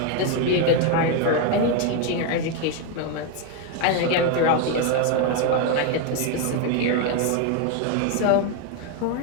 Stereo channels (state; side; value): different; both; correlation 0.01